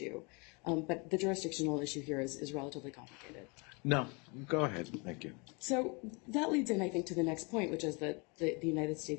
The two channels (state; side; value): quieter; right; 30.9 dB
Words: but the jurisdictional issue here is relatively complicated. No, go ahead. Thank you. So that leads in, I think, to the next point, which is that the United